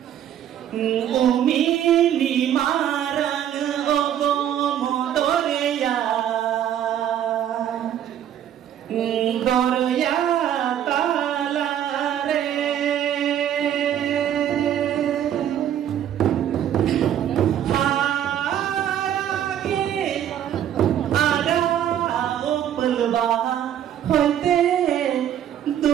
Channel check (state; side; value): quieter; left; 10.4 dB